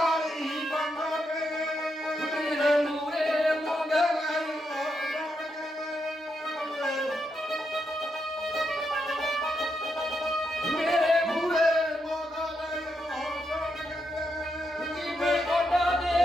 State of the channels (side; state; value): both; normal; correlation 0.82